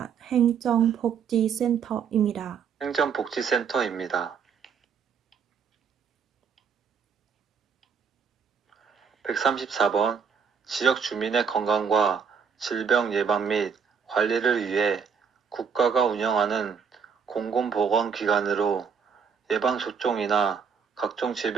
행정복지센터입니다. 행정복지센터입니다. 134번. 지역 주민의 건강과 질병 예방 및 관리를 위해 국가가 운영하는 공공보건기관으로 예방접종이나 각종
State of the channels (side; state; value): left; quieter; 6.5 dB